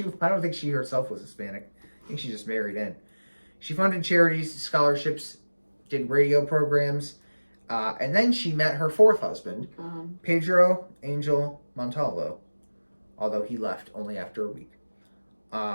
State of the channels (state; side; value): inverted; both; correlation -1.00